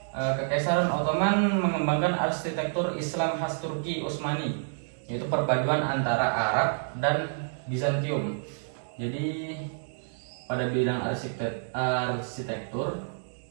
Kekaisaran Ottoman mengembangkan arsitektur Islam khas Turki Utsmani, yaitu perpaduan antara Arab dan Bizantium. Jadi pada bidang arsitektur,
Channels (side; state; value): left; silent; digital silence